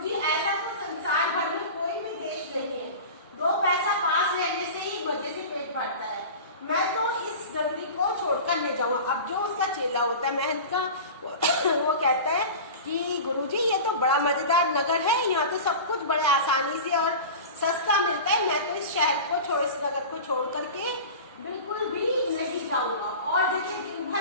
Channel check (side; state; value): both; inverted; correlation -0.33